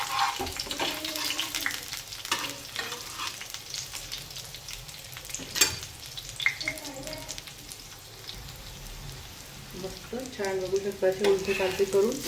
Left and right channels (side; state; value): both; identical; correlation 1.00